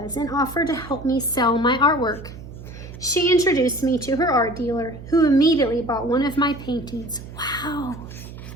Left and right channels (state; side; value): noise; right; hum, 14 dB below the sound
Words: and offered to help me sell my artwork. She introduced me to her art dealer, who immediately bought one of my paintings. Wow!